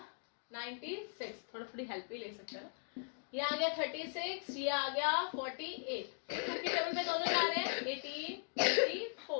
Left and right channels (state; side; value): silent; right; 52 dB below the other